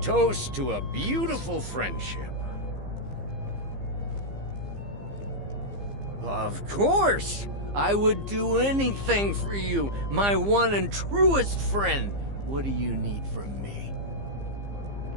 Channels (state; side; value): late; left; 15 ms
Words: toast to a beautiful friendship. Of course! I would do anything for you, my one and truest friend. What do you need from me?